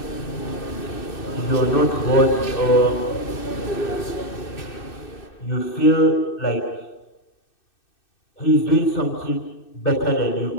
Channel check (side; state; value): right; late; 2.6 ms